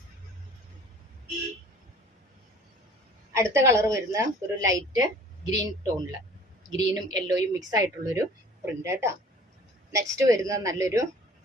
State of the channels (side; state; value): both; normal; correlation 0.49